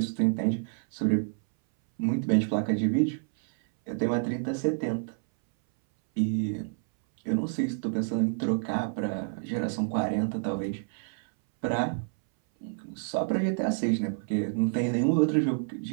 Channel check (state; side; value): silent; left; 59 dB below the other